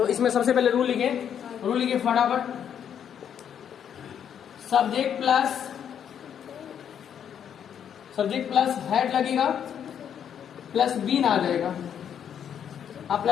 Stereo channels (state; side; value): quieter; right; 8.7 dB